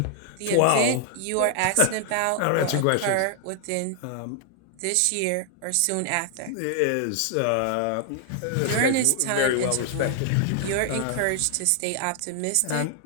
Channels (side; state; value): both; different; correlation 0.00